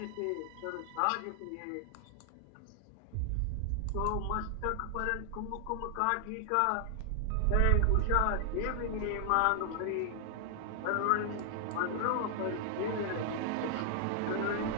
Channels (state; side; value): different; both; correlation 0.00